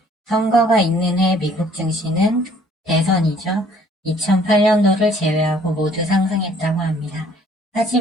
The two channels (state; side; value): normal; both; correlation 0.59